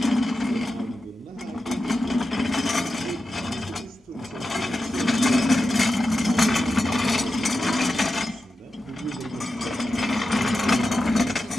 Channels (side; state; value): both; normal; correlation 0.91